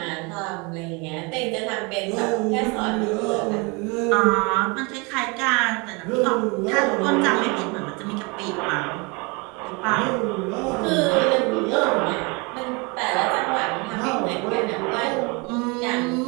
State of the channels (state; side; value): quieter; left; 29.2 dB